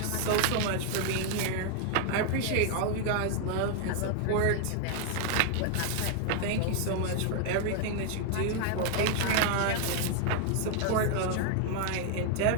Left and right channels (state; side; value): different; both; correlation 0.00